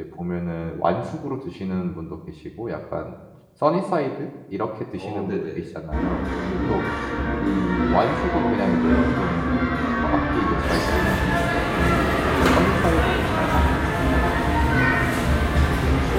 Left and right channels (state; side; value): identical; both; correlation 1.00